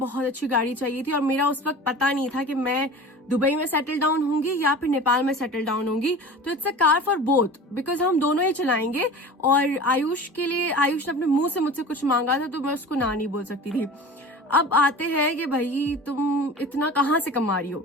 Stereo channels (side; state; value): both; normal; correlation 0.37